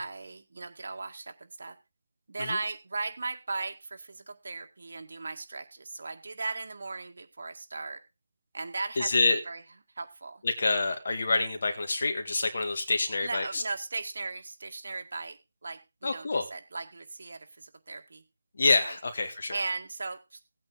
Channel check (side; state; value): both; inverted; correlation -0.93